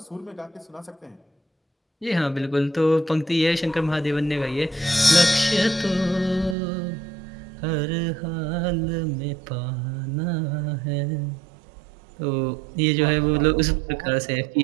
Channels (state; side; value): drops out; left; at 6.6 s